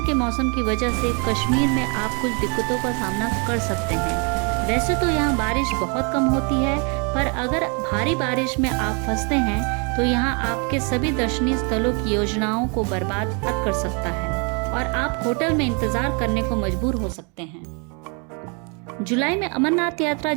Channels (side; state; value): left; quieter; 34.7 dB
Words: के मौसम की वजह से कश्मीर में आप कुछ दिक्कतों का सामना कर सकते हैं। वैसे तो यहाँ बारिश बहुत कम होती है, पर अगर भारी बारिश में आप फंसते हैं तो यहाँ आपके सभी दर्शनीय स्थलों की योजनाओं को बर्बाद कर सकता है और आप होटल में इंतजार करने को मजबूर हो सकते हैं। जुलाई में अमरनाथ यात्रा